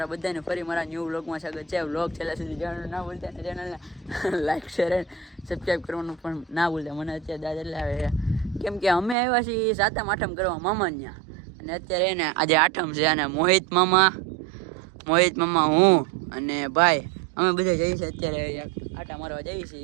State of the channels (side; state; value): left; drops out; at 9.2 s